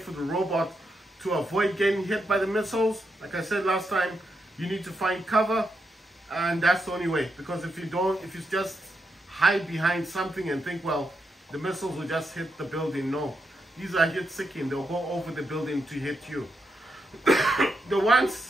the robot to avoid getting hit by the missiles, like I said last time, you need to find cover, and that's the only way. Because if you just hide behind something and think, well, the missiles will just hit the building, no. These are heat-seeking. They'll go over the building to hit you. The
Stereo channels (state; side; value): normal; both; correlation 0.83